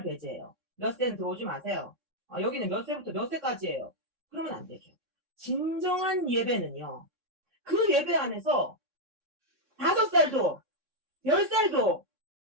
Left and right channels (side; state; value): left; late; 3.6 ms